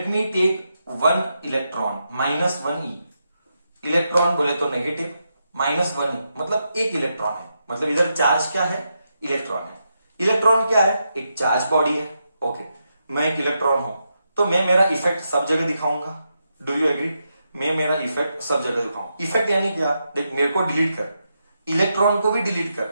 me take one electron, -1e. Electron बोले तो नेगेटिव, -1e मतलब एक इलेक्ट्रॉन है. मतलब इधर चार्ज क्या है? इलेक्ट्रॉन है. इलेक्ट्रॉन क्या है? एक चार्ज बॉडी है. ओके, मैं एक इलेक्ट्रॉन हूं तो मैं मेरा इफेक्ट सब जगह दिखाऊंगा. Do you agree? मैं मेरा इफेक्ट सब जगह दिखाऊं. इफेक्ट यानी क्या? देख, मेरे को डिलीट कर, इलेक्ट्रॉन को भी डिलीट कर,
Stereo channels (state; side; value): inverted; both; correlation -0.84